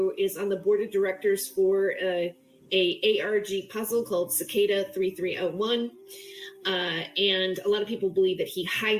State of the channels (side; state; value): both; identical; correlation 1.00